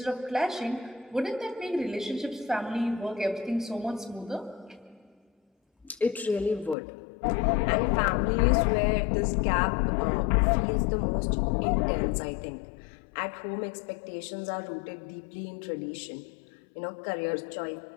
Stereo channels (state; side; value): drops out; right; at 6.8 s